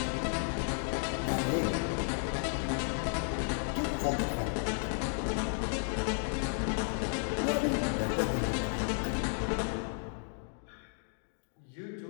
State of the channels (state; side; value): silent; right; 56 dB below the other